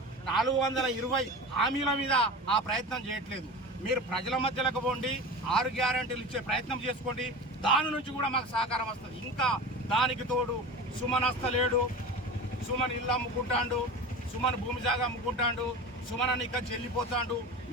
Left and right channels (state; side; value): normal; both; correlation 0.31